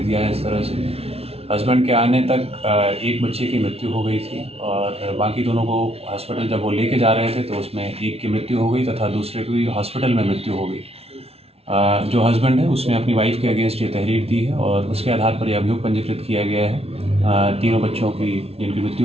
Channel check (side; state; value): left; late; 0.30 ms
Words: दिया है इस तरह से। हस्बैंड के आने तक एक बच्चे की मृत्यु हो गई थी और बाकी दोनों को हॉस्पिटल जब वो लेके जा रहे थे तो उसमें एक की मृत्यु हो गई तथा दूसरे की हॉस्पिटल में मृत्यु हो गई। जो हस्बैंड है उसने अपनी वाइफ के अगेंस्ट ये तहरीर दी है और उसके आधार पर यह अभियोग पंजीकृत किया गया है। तीनों बच्चों की जिनकी